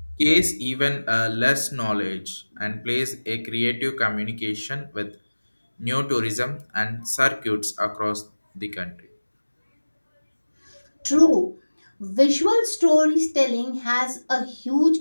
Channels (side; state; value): both; inverted; correlation -1.00